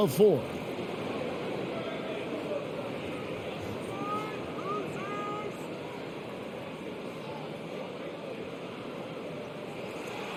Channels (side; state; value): both; identical; correlation 1.00